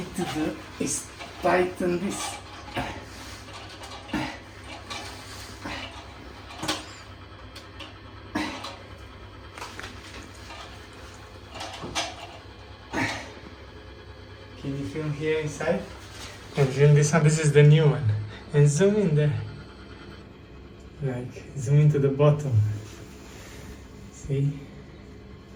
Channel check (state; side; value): identical; both; correlation 1.00